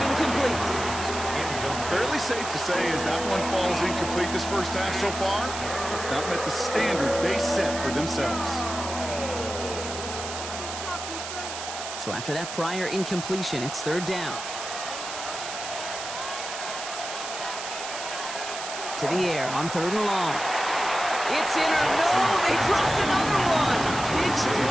incomplete. Fairly safe to say as that one falls incomplete this first half so far, it's not met the standard they set for themselves. So after that prior incompletion, it's 3rd down. To the air on 3rd and long. It's in or no, they dropped another one. It's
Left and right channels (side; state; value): right; noise; hiss, 8 dB below the sound